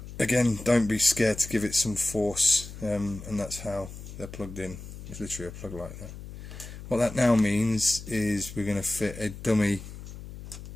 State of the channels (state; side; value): noise; left; hum, 13 dB below the sound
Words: again, don't be scared to give it some force, and that's how they're plugged in. It's literally a plug like that. What that now means is we're going to fit a dummy